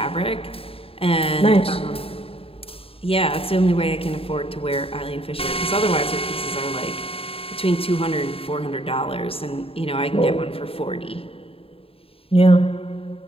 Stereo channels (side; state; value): right; late; 0.27 ms